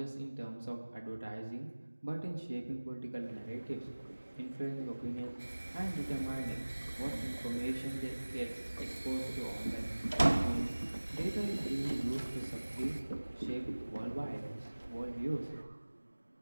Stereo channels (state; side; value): inverted; both; correlation -1.00